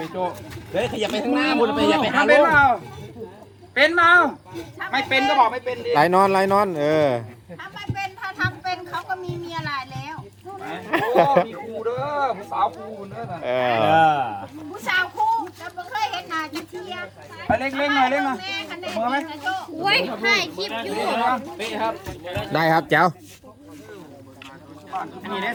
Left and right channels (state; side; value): identical; both; correlation 1.00